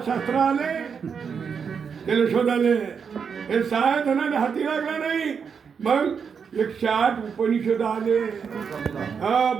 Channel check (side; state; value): left; quieter; 6.4 dB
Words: शास्त्र आले त्याला शोधाले. हे सहा धनाले हाती लागला नाही, मग 108 उपनिषद आले. हा